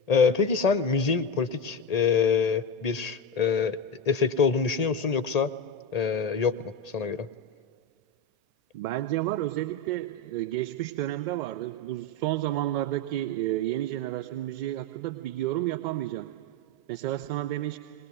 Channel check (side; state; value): right; late; 1.8 ms